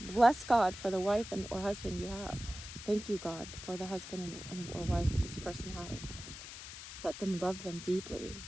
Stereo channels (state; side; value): noise; left; hiss, 11 dB below the sound